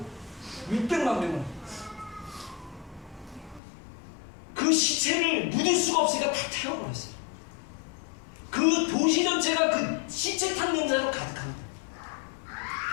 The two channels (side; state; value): right; drops out; at 3.6 s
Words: 600만 명을. 그 시체를 묻을 수가 없으니까 다 태워버렸어요. 그 도시 전체가 그 시체탄 냄새로 가득합니다.